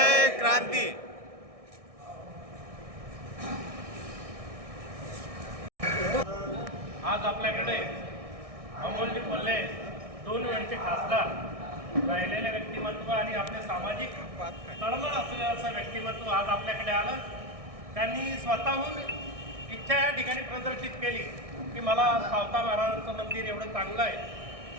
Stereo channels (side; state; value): left; late; 1.6 ms